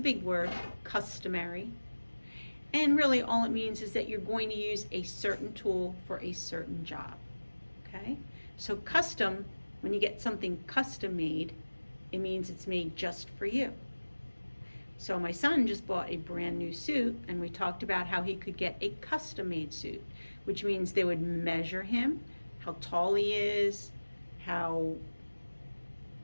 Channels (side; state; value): both; inverted; correlation -1.00